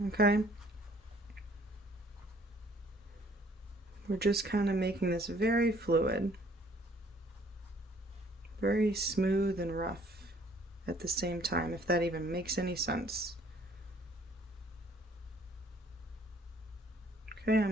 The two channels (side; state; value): both; normal; correlation 0.59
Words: okay? We're just kind of making this very fluid, very smooth and rough at the same time, if that even makes any sense. Okay,